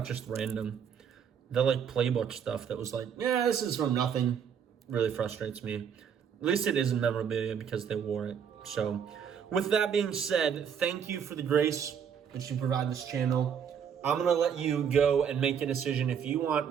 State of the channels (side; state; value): left; quieter; 7.7 dB